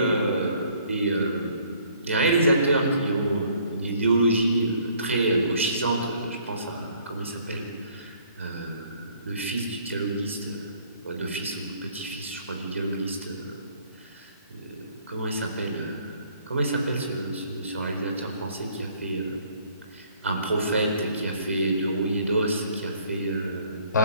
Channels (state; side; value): inverted; both; correlation -0.60